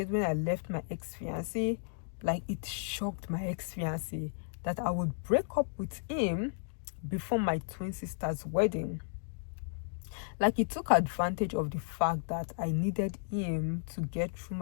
when I left my ex-fiancé. Like it shocked my ex-fiancé that I would break up with him before my twin sister's wedding. Like he took advantage of the fact that I needed him to get through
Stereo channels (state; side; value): silent; right; digital silence